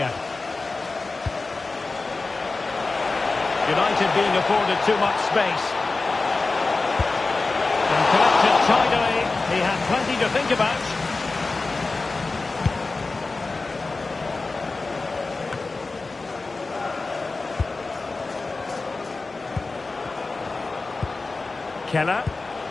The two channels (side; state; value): right; quieter; 3.7 dB